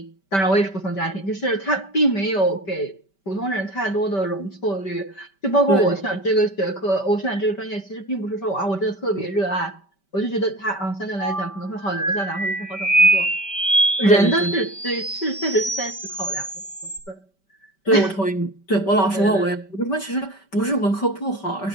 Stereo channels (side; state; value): right; late; 5.2 ms